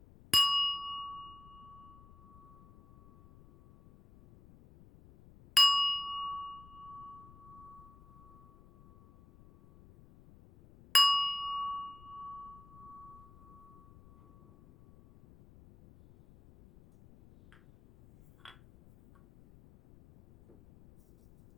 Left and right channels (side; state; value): left; noise; rumble, 24 dB below the sound